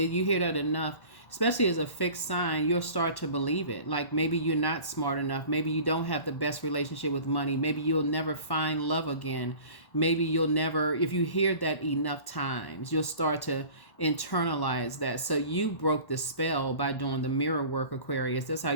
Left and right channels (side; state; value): right; late; 1.1 ms